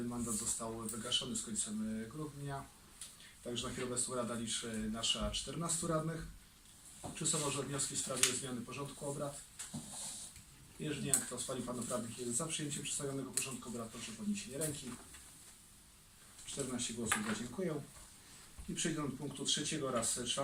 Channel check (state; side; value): identical; both; correlation 1.00